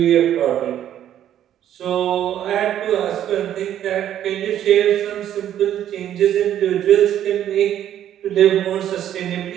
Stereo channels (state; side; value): quieter; left; 11.0 dB